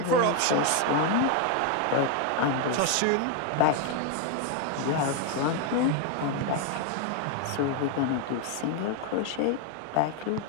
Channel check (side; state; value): both; different; correlation 0.01